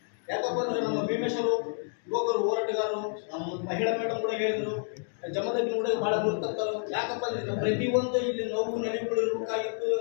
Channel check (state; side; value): silent; right; 58 dB below the other